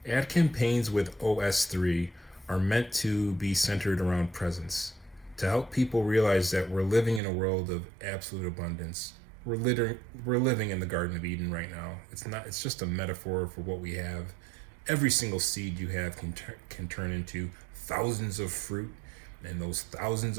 Ad campaigns with OS3 are meant to be centered around presence, to help people realize that we're living in a world of absolute abundance. We're living in the Garden of Eden right now. It's just a metaphor for what we have. Every single seed you have can turn into thousands of fruit, and those thousands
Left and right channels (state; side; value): drops out; left; at 7.2 s